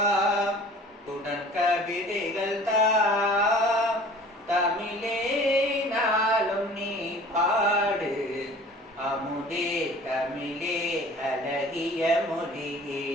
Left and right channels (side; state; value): both; normal; correlation 0.46